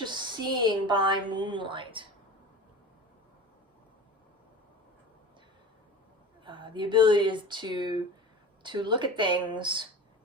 seeing by moonlight. The ability is to look at things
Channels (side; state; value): both; normal; correlation 0.34